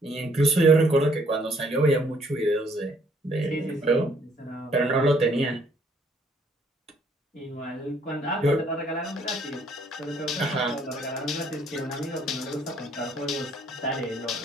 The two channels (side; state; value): both; normal; correlation 0.65